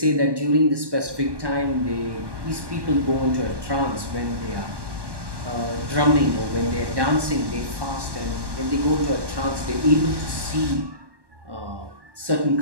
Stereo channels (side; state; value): left; late; 1.1 ms